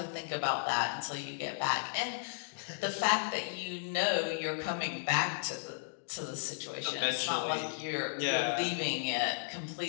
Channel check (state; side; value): silent; right; digital silence